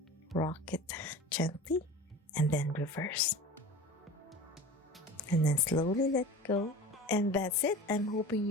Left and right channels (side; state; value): both; normal; correlation 0.36